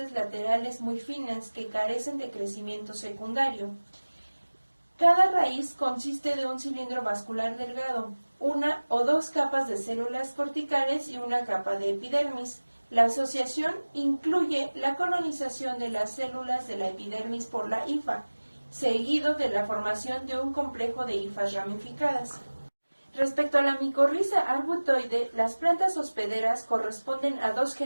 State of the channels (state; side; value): inverted; both; correlation -1.00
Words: laterales muy finas que carecen de crecimiento secundario. Cada raíz consiste de un cilindro vascular delgado, una o dos capas de células corticales y una capa de epidermis. La asociación incluye la colonización de las células de la epidermis por la hifa, seguido de la formación de un complejo de hifas ramificadas. Respecto a la micorriza arbutoide, las plantas hospederas corresponden a dos